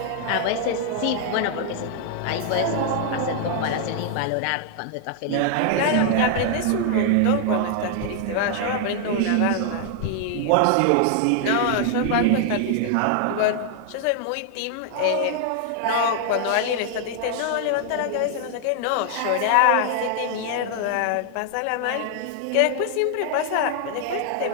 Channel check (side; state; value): both; different; correlation 0.00